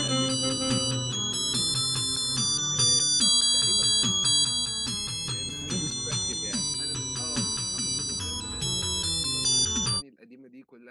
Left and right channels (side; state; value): both; identical; correlation 1.00